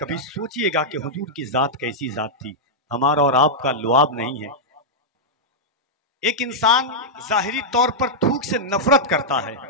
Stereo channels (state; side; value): normal; both; correlation -0.07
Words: सोचिएगा कि हुजूर की जात कैसी जात थी। हमारा और आपका लुआब नहीं है। एक इंसान जाहिरी तौर पर थूक से नफरत करता है।